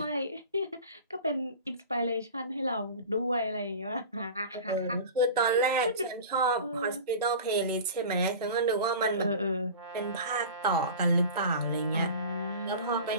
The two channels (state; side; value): inverted; both; correlation -0.36